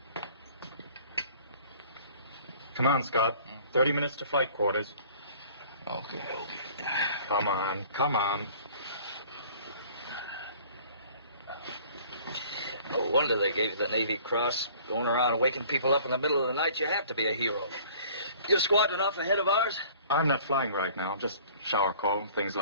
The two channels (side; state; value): both; inverted; correlation -0.51